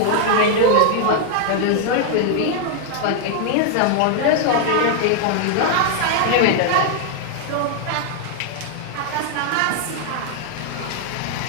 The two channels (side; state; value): both; different; correlation 0.00